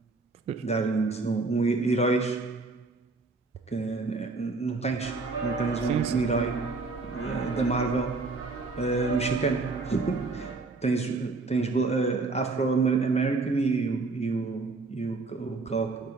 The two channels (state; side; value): quieter; left; 3.7 dB